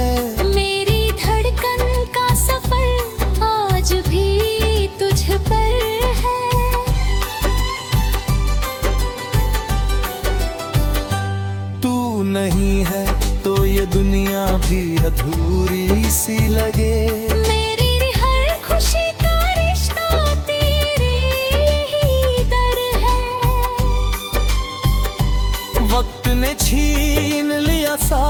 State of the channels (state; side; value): identical; both; correlation 1.00